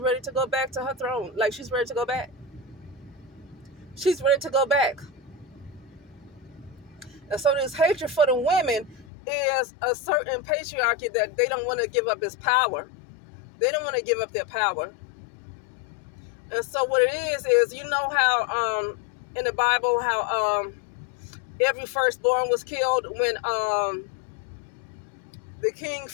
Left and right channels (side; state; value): right; drops out; at 9.1 s